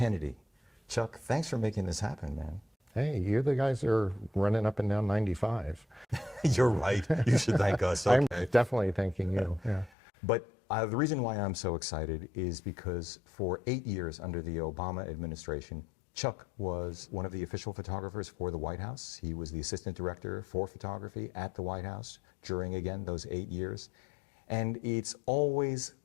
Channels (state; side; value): drops out; right; at 9.9 s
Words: Chuck, thanks for making this happen, man. Hey, you the guys are running up and down 95. You're right. You should thank us. Okay. I'm definitely thanking you. Yeah. But the reason why I'm so excited is because for 8 years under the Obama administration, Chuck was one of the official photographers for the White House. He was the assistant director for photography at the White House during, again, those 8 years. And it's always